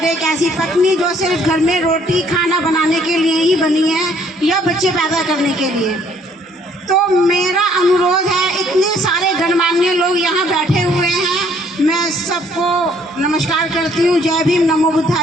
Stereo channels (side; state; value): both; normal; correlation 0.63